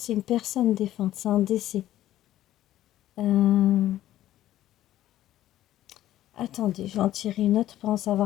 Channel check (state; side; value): quieter; right; 13.4 dB